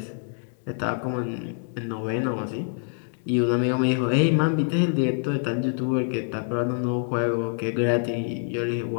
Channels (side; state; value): right; silent; 61 dB below the other